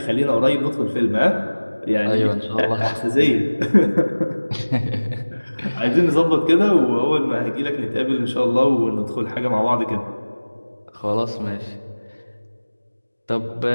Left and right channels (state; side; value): inverted; both; correlation -1.00